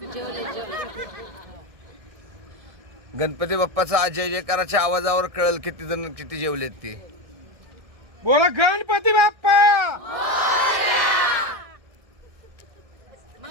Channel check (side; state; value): left; late; 1.6 ms